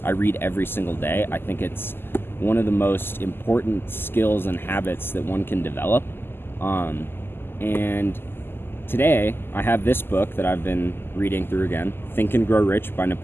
I read every single day. I think it's one of the most important skills and habits that one can develop. And today I have this book that I've been reading through again, Think and Grow Rich by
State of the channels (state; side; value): late; right; 0.11 ms